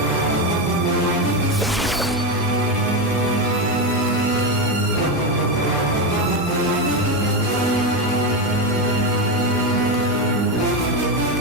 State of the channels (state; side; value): normal; both; correlation 0.12